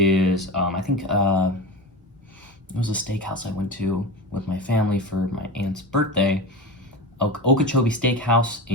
I think it was a steakhouse I went to with my family for my aunt's birthday. Okeechobee Steakhouse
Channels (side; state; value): both; normal; correlation 0.26